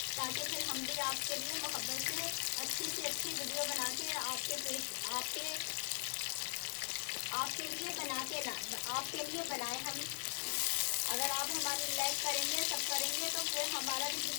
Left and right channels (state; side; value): silent; right; digital silence